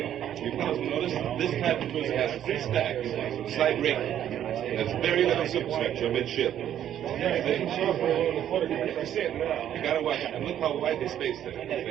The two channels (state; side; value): quieter; left; 10.6 dB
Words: You fellas notice this type of cruiser has 3 stacks, slight rig. There's very little superstructure midship. You gotta watch it. And look how wide the space there.